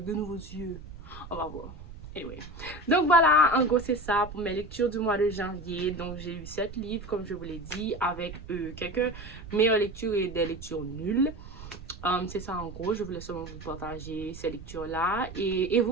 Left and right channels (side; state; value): right; noise; rumble, 14 dB below the sound